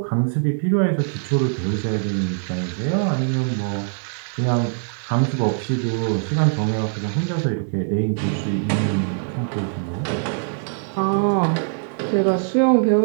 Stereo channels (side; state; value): left; silent; digital silence